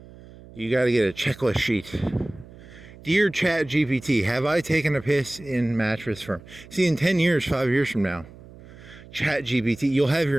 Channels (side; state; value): right; noise; hum, 20 dB below the sound